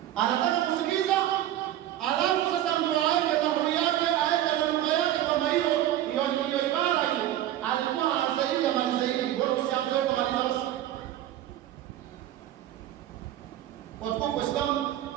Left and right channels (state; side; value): quieter; left; 12.8 dB